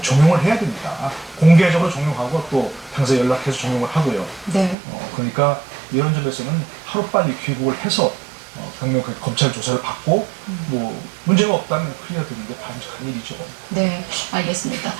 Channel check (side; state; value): left; drops out; at 4.8 s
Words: 종용을 해야 됩니다. 공개적으로 종용하고 또 당사 연락해서 종용을 하고요. 네. 그러니까 이런 점에서는 하루빨리 귀국을 해서 강력하게 검찰 조사를 받고 뭐 문제가 없다면 클리어 되는데 바람직한 일이죠. 네, 알겠습니다.